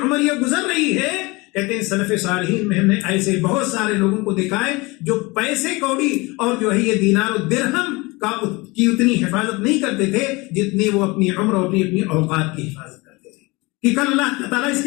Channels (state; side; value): quieter; right; 24.3 dB